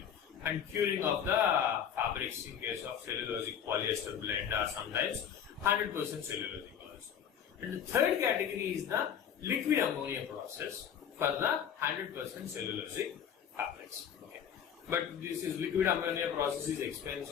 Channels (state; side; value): quieter; right; 8.5 dB